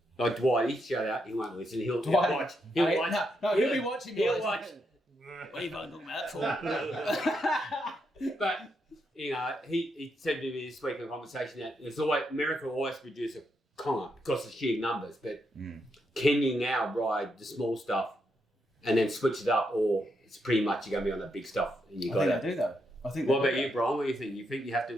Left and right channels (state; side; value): normal; both; correlation 0.80